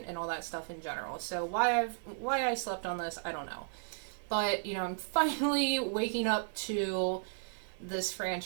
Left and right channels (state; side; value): silent; left; digital silence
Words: all that stuff in general. So why I slept on this, I don't know. But, I'm finally waking up to this